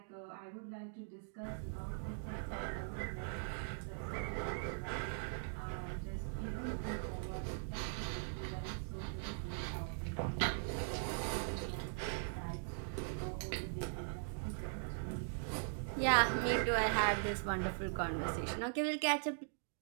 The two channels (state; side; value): silent; left; digital silence